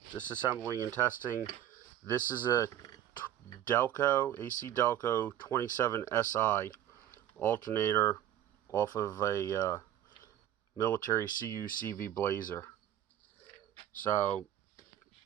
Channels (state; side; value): quieter; left; 11.6 dB